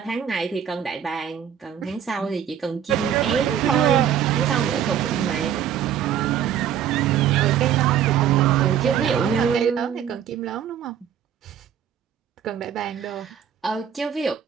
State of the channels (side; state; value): left; quieter; 9.2 dB